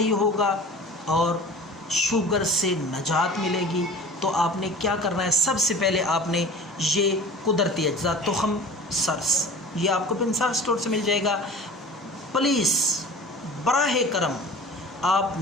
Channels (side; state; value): both; normal; correlation 0.40